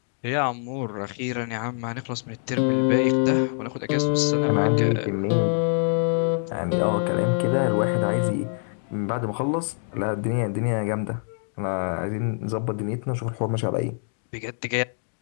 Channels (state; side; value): silent; right; digital silence